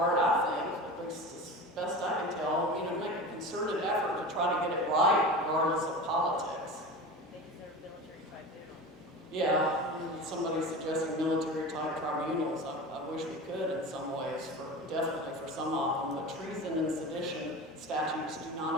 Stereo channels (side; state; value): both; normal; correlation 0.31